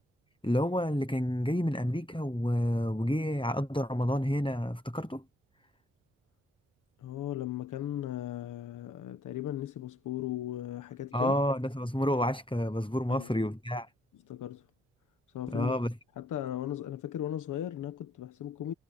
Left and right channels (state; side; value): normal; both; correlation 0.72